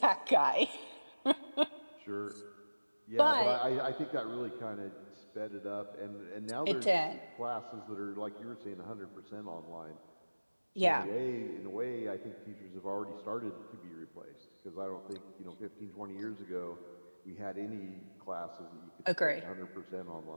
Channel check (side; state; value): both; inverted; correlation -1.00